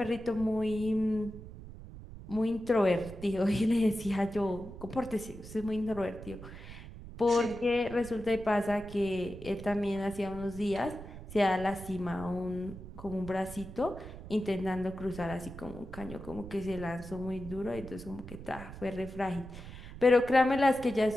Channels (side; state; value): right; noise; rumble, 13 dB below the sound